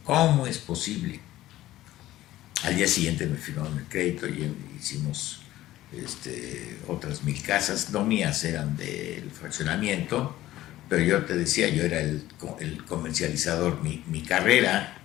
¿Cómo es posible? Al día siguiente me firmaron el crédito y hicimos otras 1,000 casas, no mías, eran del fraccionamiento, pero yo te decía, yo era el comercializador. Mi carrera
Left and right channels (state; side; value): quieter; right; 15.1 dB